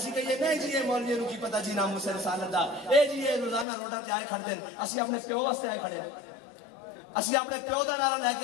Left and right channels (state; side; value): drops out; right; at 3.7 s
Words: کہیے نہیں جی یہ مولوی نو کی پتہ جی ناموس رسالت دا، اے جی یہ روزانہ روڈاں تے آئے کھڑدے ہیں، اسی اپنے پیو واسطے آئے کھڑے ہیں، اسی اپنے پیو دا نعرہ لے